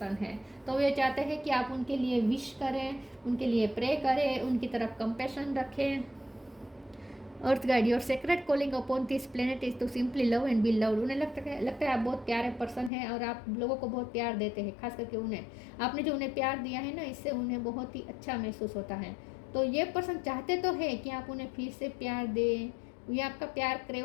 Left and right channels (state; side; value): drops out; right; at 12.9 s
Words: हैं। तो वे चाहते हैं कि आप उनके लिए विश करें, उनके लिए प्रे करें, उनकी तरफ कंपैशन रखें। Earth guide, your sacred calling upon this planet is to simply love and be loved. उन्हें लगता है आप बहुत प्यारे पर्सन हैं और आप लोगों को बहुत प्यार देते हैं, खास करके उन्हें, आपने जो उन्हें प्यार दिया है ना, इससे उन्हें बहुत ही अच्छा महसूस होता है। तो ये पर्सन चाहते तो है कि आप उन्हें फिर से प्यार दें, ये आपका प्यार